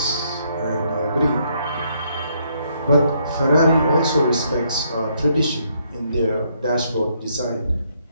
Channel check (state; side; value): inverted; both; correlation -0.72